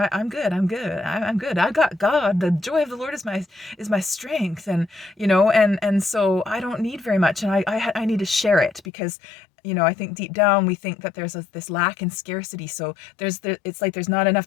good. I got God. The joy of the Lord is my strength. And, and so I don't need very much. And I need to share it because, I think deep down we think that there's this lack and scarcity. So it's like there's not enough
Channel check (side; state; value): right; drops out; at 8.8 s